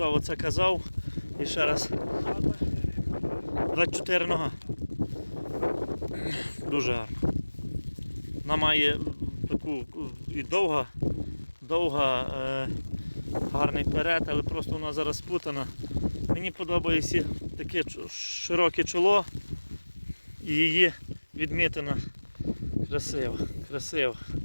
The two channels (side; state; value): both; inverted; correlation -1.00